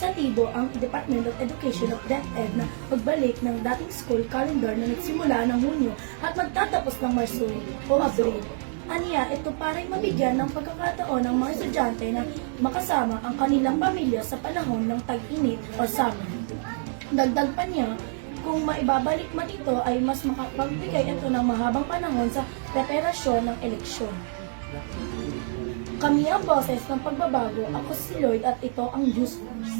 ang Department of Education of DepEd na pagbalik ng dating school calendar na nagsimula ng Hunyo at magtatapos ng Marso o Abril. Aniya, ito para mabigyan ng pagkakataon ng mga estudyante na makasama ang kanilang pamilya sa panahon ng tag-init o summer. Dagdag pa niya, kung maibabalik man ito ay mas makapagbigay ito ng mahabang panahon sa preparasyon ng eleksyon. Kami ang boses ng pagbabago. Ako si Lloyd at ito ang News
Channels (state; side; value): silent; left; 61 dB below the other